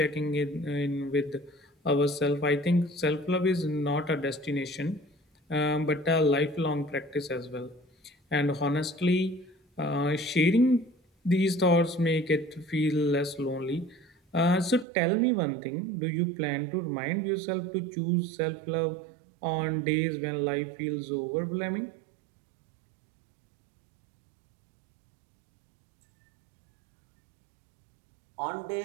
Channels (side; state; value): left; drops out; at 14.9 s